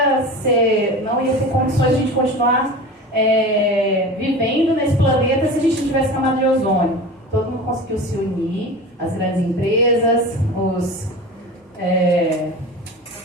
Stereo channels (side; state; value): both; normal; correlation 0.33